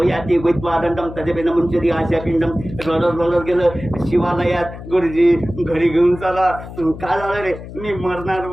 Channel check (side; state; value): left; noise; hum, 13 dB below the sound